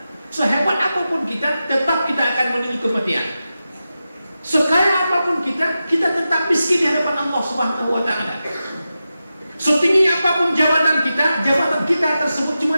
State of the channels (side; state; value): both; inverted; correlation -0.92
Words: Sehebat apapun kita, tetap kita akan menuju kematian. Sekaya apapun kita tetap miskin di hadapan Allah Subhanahu wa taala. Setinggi apapun jabatan kita tersebut cuma